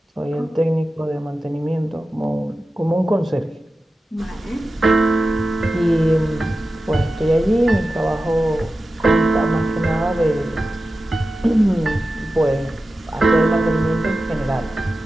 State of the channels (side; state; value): both; normal; correlation 0.94